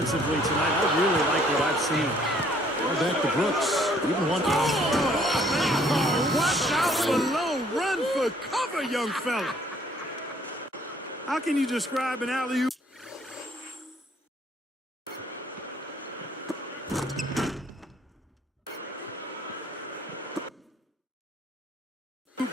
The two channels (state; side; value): normal; both; correlation 0.61